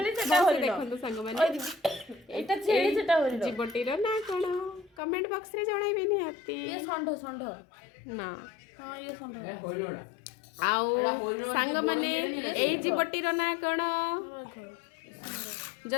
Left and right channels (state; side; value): drops out; right; at 5.0 s